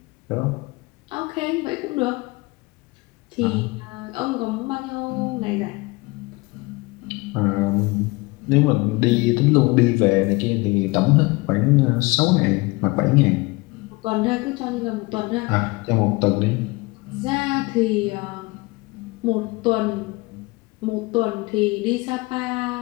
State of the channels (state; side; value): quieter; right; 24.3 dB